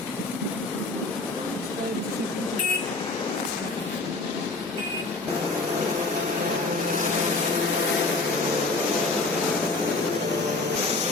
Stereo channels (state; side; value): quieter; right; 3.5 dB